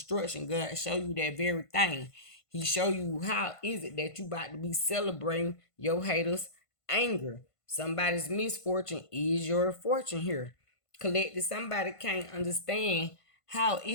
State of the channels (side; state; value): right; late; 1.5 ms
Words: God show you that very thing. He show you how is it that you about to be celebrating your haters' anger. Somebody's misfortune is your fortune here. collected. Somebody can't understand how